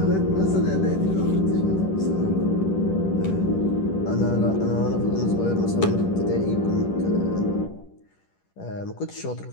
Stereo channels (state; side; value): late; right; 10 ms